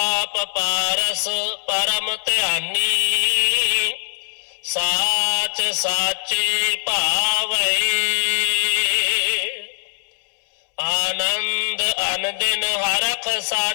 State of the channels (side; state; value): right; silent; digital silence